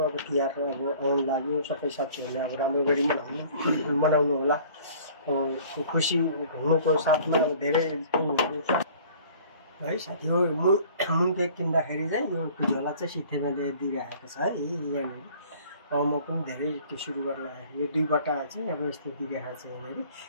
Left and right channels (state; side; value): inverted; both; correlation -0.51